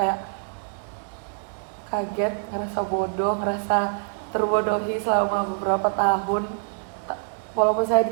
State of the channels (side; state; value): left; silent; digital silence